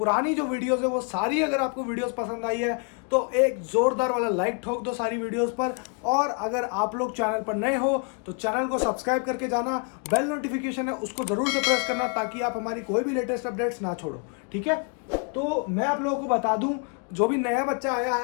जो वीडियोस है वो सारी अगर आपको वीडियोस पसंद आई है तो एक जोरदार वाला लाइक ठोक दो सारी वीडियोस पर। और अगर आप लोग चैनल पर नए हो तो चैनल को सब्सक्राइब करके जाना, बेल नोटिफिकेशन है उसको जरूर से प्रेस करना ताकि आप हमारी कोई भी लेटेस्ट अपडेट्स ना छोड़ो। ठीक है, तो मैं आप लोगों को बता दूं, जो भी नया बच्चा आया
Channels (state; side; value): quieter; right; 38.3 dB